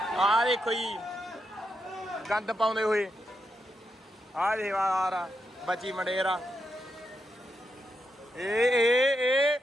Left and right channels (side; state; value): both; normal; correlation 0.84